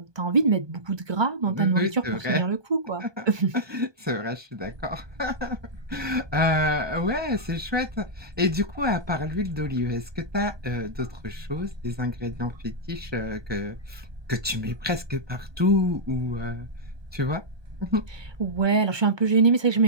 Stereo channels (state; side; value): late; left; 1.2 ms